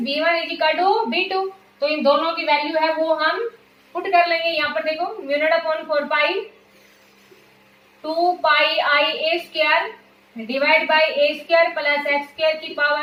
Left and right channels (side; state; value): both; identical; correlation 1.00